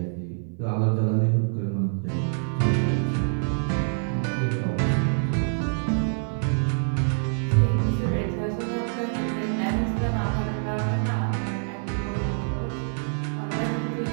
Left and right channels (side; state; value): left; silent; 57 dB below the other